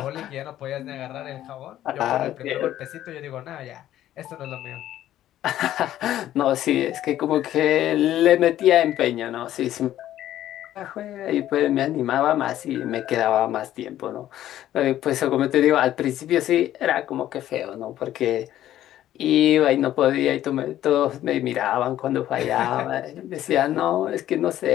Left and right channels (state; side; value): quieter; right; 12.7 dB